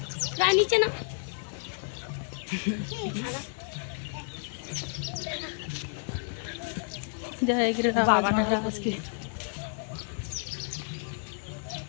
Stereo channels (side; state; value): right; silent; 57 dB below the other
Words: नीचे ना जय गिरिराज महाराज की।